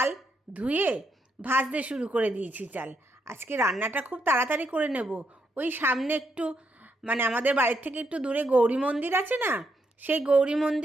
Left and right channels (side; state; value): both; normal; correlation 0.79